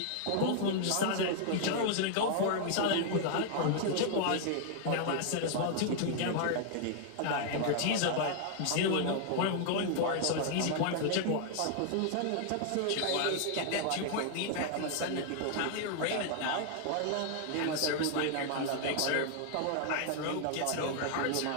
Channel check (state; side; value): different; both; correlation 0.00